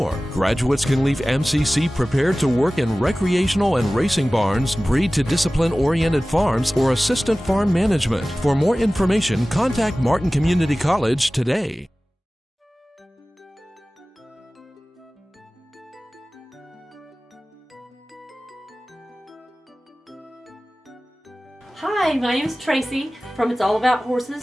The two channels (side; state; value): both; normal; correlation 0.97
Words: Graduates can leave MCC prepared to work in recreational and racing barns, breed to discipline-oriented farms, or assistant farm management. For more information, contact Martin Community College today. Hi, my name is Tracy from It's All About